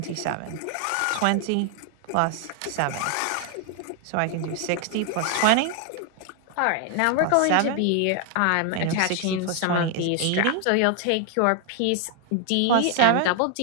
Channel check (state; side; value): different; both; correlation 0.00